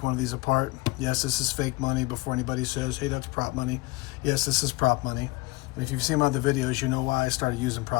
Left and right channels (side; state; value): right; quieter; 22.8 dB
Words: one of these apart. Yes, this is fake money before anybody says, hey, that's prop money. Yes, this is prop money. And if you've seen my other videos, you know why I started using